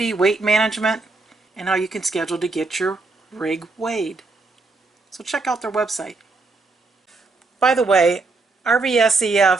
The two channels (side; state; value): left; quieter; 3.6 dB